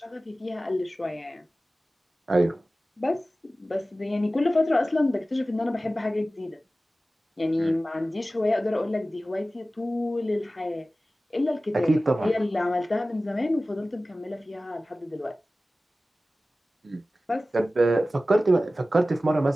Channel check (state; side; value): normal; both; correlation 0.96